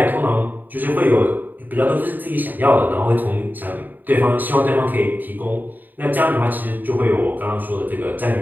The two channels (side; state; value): left; late; 0.088 ms